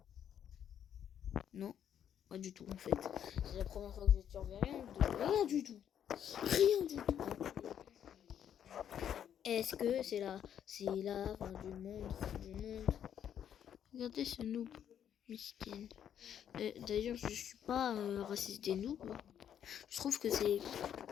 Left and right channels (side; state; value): right; quieter; 9.4 dB